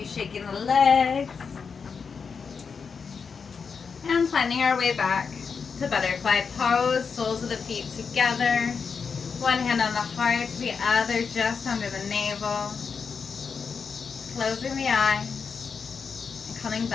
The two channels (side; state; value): right; quieter; 5.7 dB